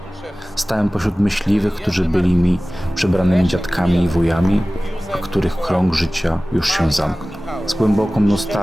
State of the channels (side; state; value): both; normal; correlation 0.97